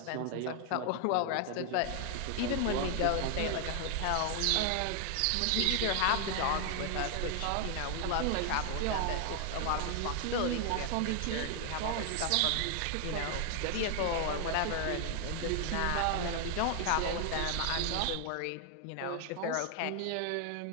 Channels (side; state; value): both; different; correlation 0.00